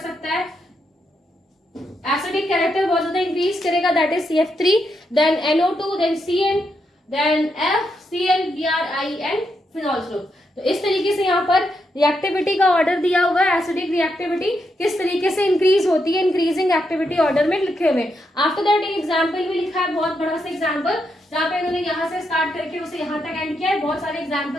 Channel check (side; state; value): both; normal; correlation 0.81